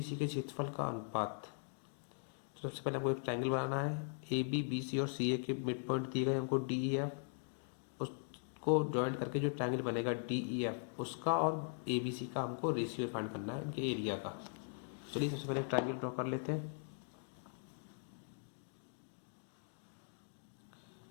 के क्षेत्रफल का अनुपात। तो सबसे पहले हमको एक ट्रायंगल बनाना है। AB, BC और CA के मिड पॉइंट दिए गए हमको DEF, उसको ज्वाइंट करके जो ट्रायंगल बनेगा DEF उसका और ABC का हमको रेशियो फाइंड करना है इनके एरिया का। चलिए सबसे पहले ट्रायंगल ड्रॉ कर लेते हैं।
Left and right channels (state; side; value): silent; right; digital silence